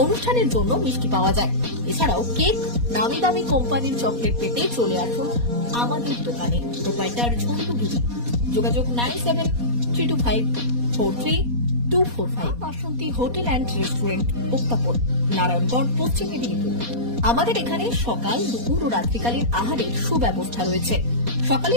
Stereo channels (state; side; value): late; left; 4.2 ms